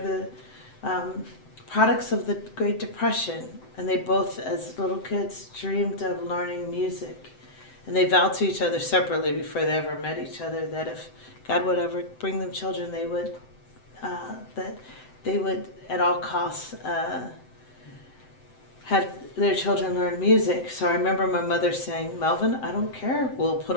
products of the Great Depression, and they both, as little kids, dreamed of learning music. And they vowed to each other separately before they ever met each other that if God would ever bring them children, they would at all costs have their children learn music. So I remember my mother saying, Melvin, I don't care, we'll put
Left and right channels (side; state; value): right; late; 7.8 ms